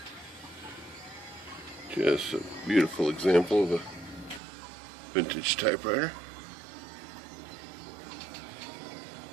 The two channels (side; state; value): left; drops out; at 4.4 s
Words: Just a beautiful example of a vintage typewriter.